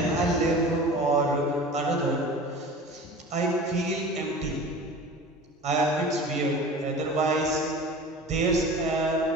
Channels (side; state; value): both; normal; correlation 0.38